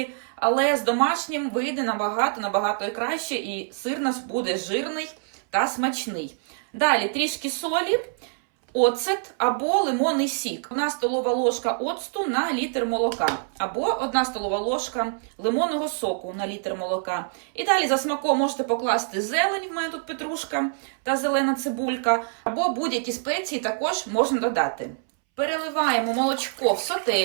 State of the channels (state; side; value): silent; left; 62 dB below the other